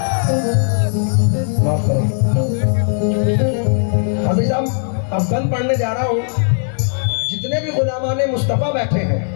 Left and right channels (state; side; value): silent; right; 68 dB below the other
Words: माफ करो हाजी साहब, अब बंद पढ़ने जा रहा हूँ। जितने भी गुलामाने मुस्तफ़ा बैठे